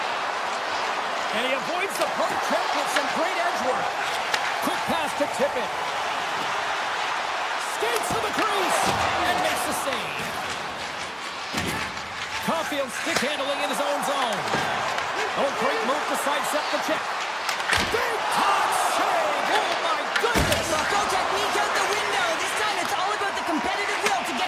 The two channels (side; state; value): both; identical; correlation 1.00